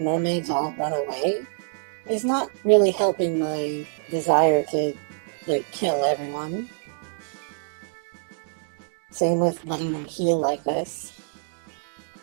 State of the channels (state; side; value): silent; left; digital silence